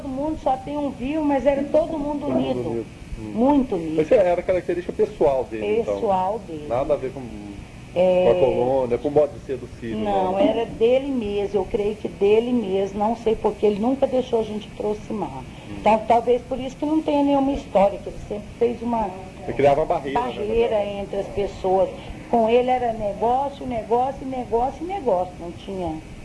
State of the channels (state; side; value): identical; both; correlation 1.00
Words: mundo, só tem um vivo, mas era todo mundo unido. Muito unido. Mas era característica pessoal dele, pessoal dele. Nada a ver com a colônia, com o modo de ser do Sírio. Não, era dele mesmo, eu creio que dele mesmo, não sei porque ele nunca deixou a gente aproximar. Então, talvez por isso que não tenha nenhuma história, que ele sempre fez uma Ele criava uma barreira entre as pessoas. Com ele era negócio, não tinha